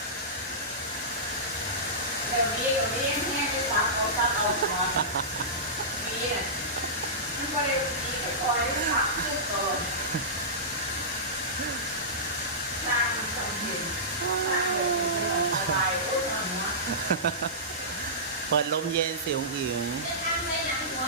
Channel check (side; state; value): both; normal; correlation -0.17